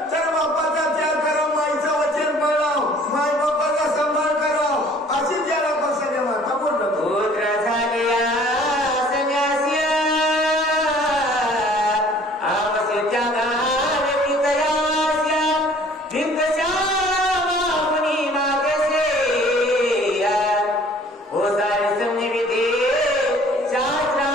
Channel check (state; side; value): normal; both; correlation 0.53